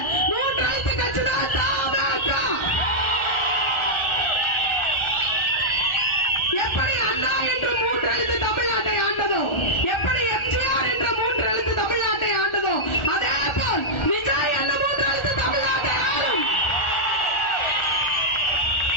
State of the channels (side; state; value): right; late; 1.4 ms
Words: 3 எழுத்து கட்சி தான் தமாக. எப்படி அண்ணா என்று 3 எழுத்து தமிழ்நாட்டை ஆண்டதோ, எப்படி எம்ஜிஆர் என்ற 3 எழுத்து தமிழ்நாட்டை ஆண்டதோ, அதே போல் விஜய் என்ற 3 எழுத்து தமிழ்நாட்டை ஆளும்.